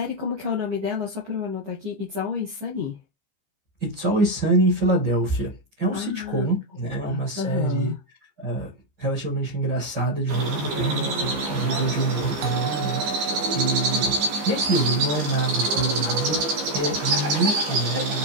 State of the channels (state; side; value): late; left; 15 ms